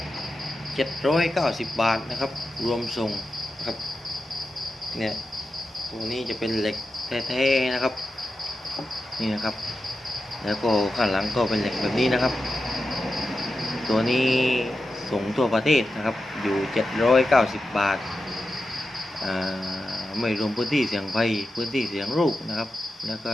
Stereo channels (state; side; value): normal; both; correlation 0.90